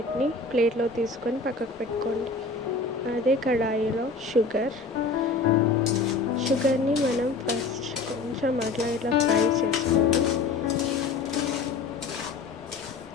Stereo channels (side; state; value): right; quieter; 4.1 dB